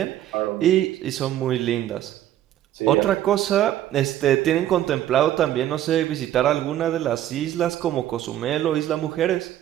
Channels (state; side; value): quieter; left; 12.4 dB